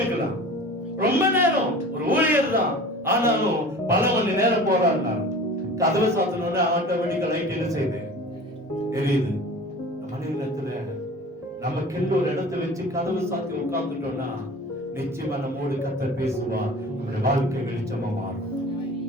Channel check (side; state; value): both; normal; correlation 0.40